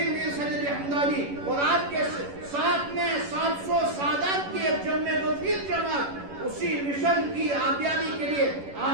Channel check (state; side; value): late; left; 11 ms